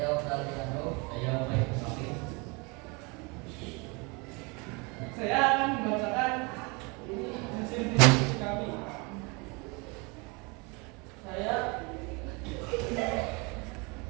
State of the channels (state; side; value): quieter; left; 29.2 dB